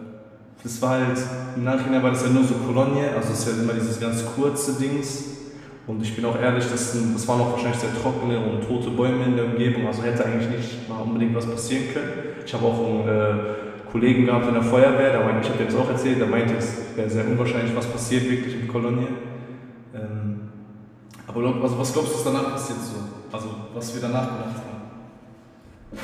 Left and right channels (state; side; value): identical; both; correlation 1.00